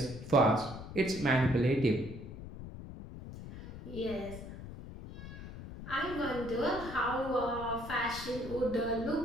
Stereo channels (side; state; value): left; noise; rumble, 12 dB below the sound